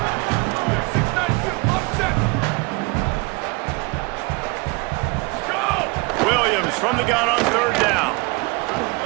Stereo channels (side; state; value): left; quieter; 27.2 dB